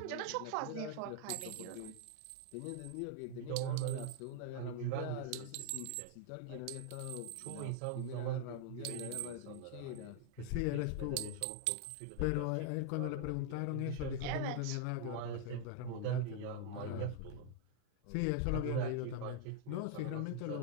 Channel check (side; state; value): both; different; correlation 0.00